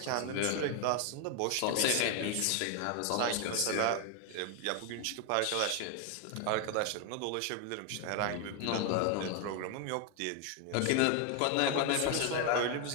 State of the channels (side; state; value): both; different; correlation 0.01